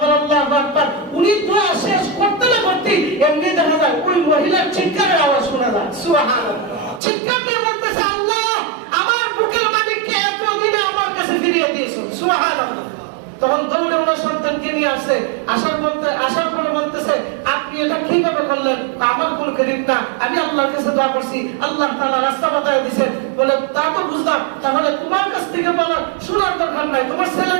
আল্লাহু আকবার। উনি দোয়া শেষ করতে না করতে এমনি দেখা যায় ওই মহিলার চিৎকারের আওয়াজ শোনা যায়। সুবহানাল্লাহ। চিৎকার দিয়ে বলতেছে, আল্লাহ আমার বুকের মালিককে এতদিনে আমার কাছে ফিরিয়ে দিয়েছো। সুবহানাল্লাহ। তখন দৌড়ে ওনার সন্তানকে নিয়ে আসে, আসার পরে বলতেছে, আপনি এটা কিভাবে করলেন? আমার কোন কারীম না, আমি আল্লাহর কাছে দোয়া করছি, আল্লাহ তাআলা রাস্তা বাতায় দিয়েছেন। বলে তা তো বুঝলাম, তাহলে তোমার কাছ থেকে বলা শোনার দরকার নাই, তোমার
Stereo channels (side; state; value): left; drops out; at 7.0 s